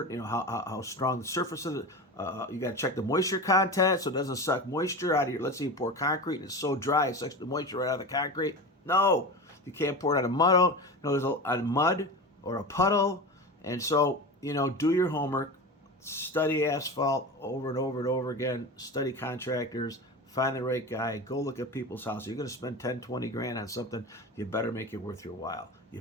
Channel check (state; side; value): normal; both; correlation 0.27